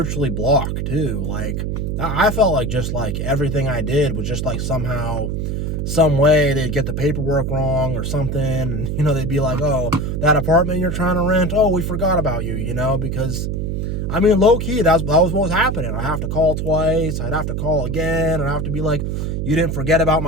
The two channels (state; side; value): noise; right; hum, 2 dB below the sound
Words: blocked too. Like, I felt like just like everything I did was just like somehow, some way they'd get the paperwork wrong or something. And, you know, they'd be like, oh, that apartment you're trying to rent, oh, we forgot about you, you know, because, I mean, low key, that was what was happening. I have to call twice. I'd have to call again. And I have to be like, you didn't forget about